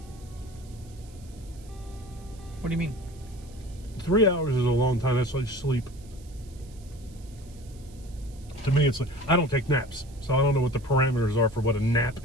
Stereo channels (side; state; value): right; noise; hiss, 25 dB below the sound